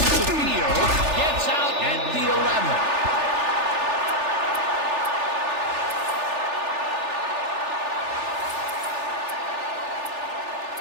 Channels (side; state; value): left; late; 3.4 ms